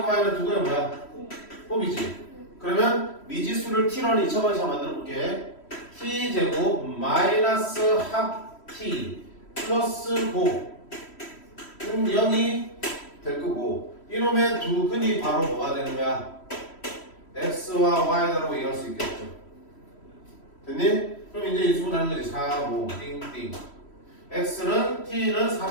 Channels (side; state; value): right; late; 3.1 ms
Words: y는 두 근의 뭐야? 곱이지. 그러면 미지수를 t로는 2차 방식으로 만들어 볼게. t 제곱 마이너스 합 t 플러스 곱은 0이 될 거고 이놈의 두 근이 바로 뭐가 되는 거야? x와 y라고 얘기할 수 있겠죠. 됐니? 그럼 이제 인수분해하는 거지. 4, 5, 띵띵. x는 t는